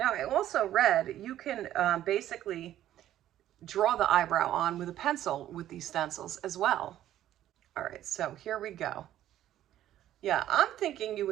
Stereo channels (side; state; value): left; quieter; 12.4 dB